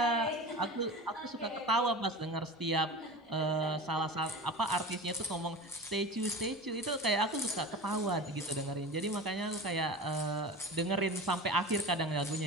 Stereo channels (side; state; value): both; normal; correlation 0.32